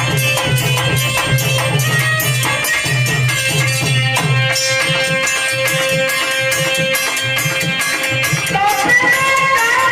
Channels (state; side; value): identical; both; correlation 1.00